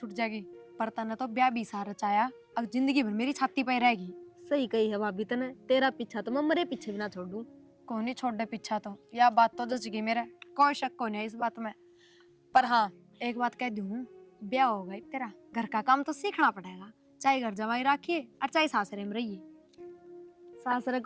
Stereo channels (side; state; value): both; identical; correlation 1.00